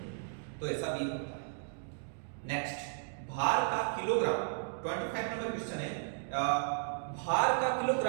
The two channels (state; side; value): silent; left; digital silence